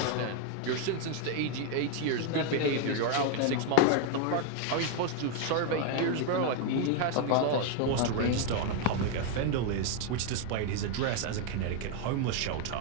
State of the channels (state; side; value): different; both; correlation 0.01